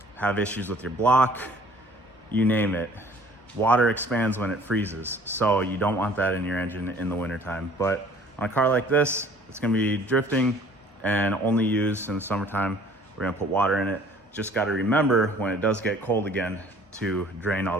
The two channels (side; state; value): both; normal; correlation 0.53